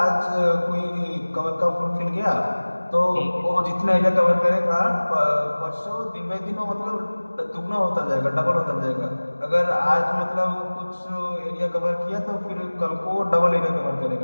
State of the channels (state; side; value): inverted; both; correlation -1.00